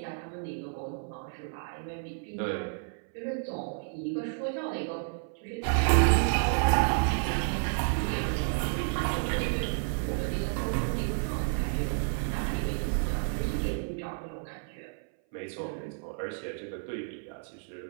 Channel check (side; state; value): left; silent; 57 dB below the other